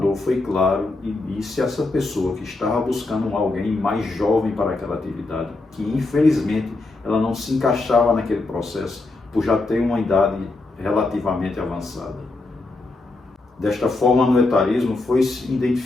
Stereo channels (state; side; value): quieter; right; 3.2 dB